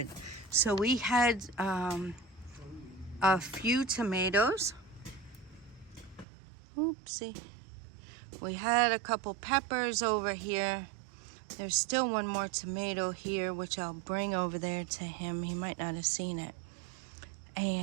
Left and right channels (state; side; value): drops out; left; at 6.2 s